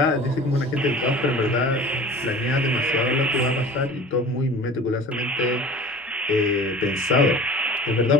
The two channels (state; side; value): normal; both; correlation 0.41